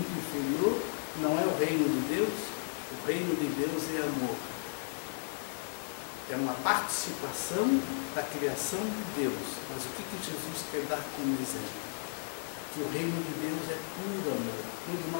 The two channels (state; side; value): silent; right; digital silence